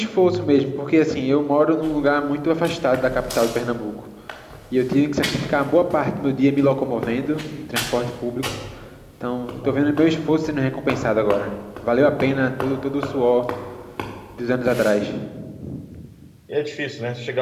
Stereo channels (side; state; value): both; identical; correlation 1.00